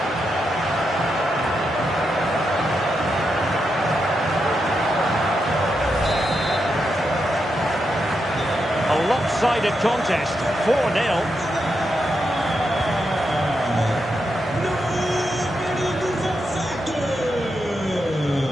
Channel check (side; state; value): both; normal; correlation 0.84